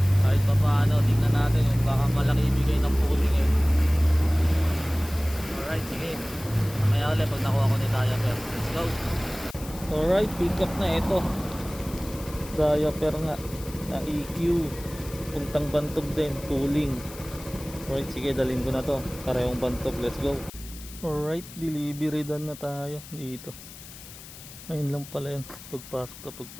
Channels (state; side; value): noise; left; hiss, 16 dB below the sound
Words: Kahit pa paano, tingnan natin yung baka malaki ibigay ng pooling eh. Alright, sige. Mamaya ulit pag nakuha ko ni diaper. Let's go. Alright, pick up na ito. Diaper nga na EQ. Puntang Bantog din, pooling. Alright, sige, dalhin ko na to. Parehong Bantog, let's go. Alright, delivery done na tayo dito. Ayun lang pala yan.